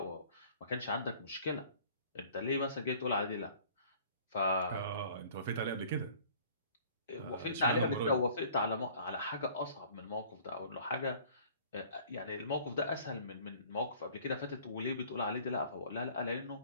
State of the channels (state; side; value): inverted; both; correlation -0.52